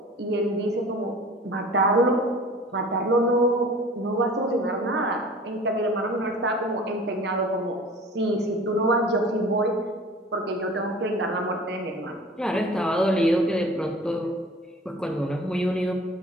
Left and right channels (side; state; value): both; normal; correlation 0.44